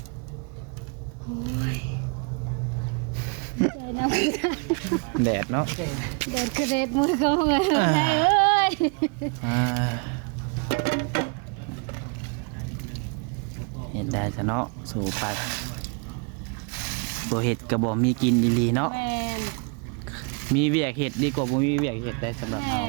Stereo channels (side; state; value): left; quieter; 34.8 dB